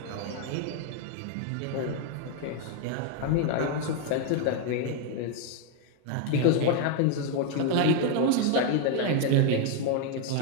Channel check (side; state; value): both; different; correlation 0.01